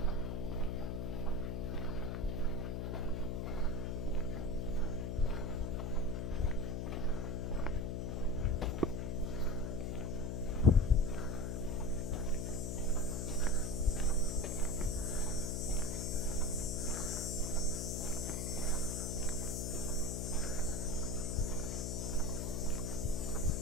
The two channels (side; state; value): left; noise; hum, 2 dB below the sound